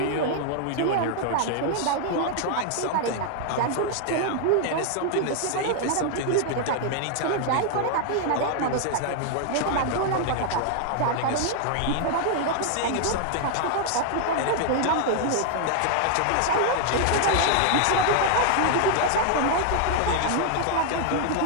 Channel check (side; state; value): both; different; correlation 0.00